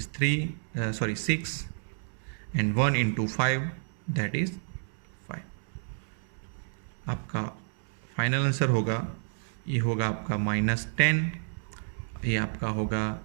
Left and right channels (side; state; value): left; silent; digital silence